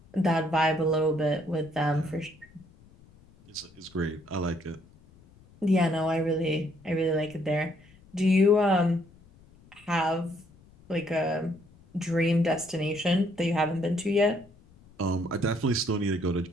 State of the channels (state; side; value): noise; left; rumble, 26 dB below the sound